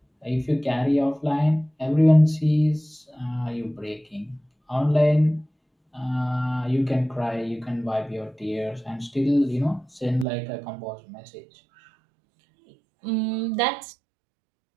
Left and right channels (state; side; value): drops out; left; at 10.2 s